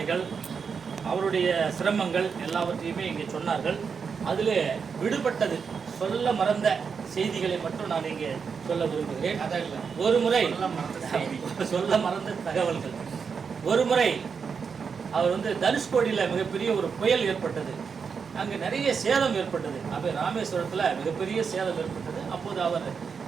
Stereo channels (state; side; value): quieter; left; 6.0 dB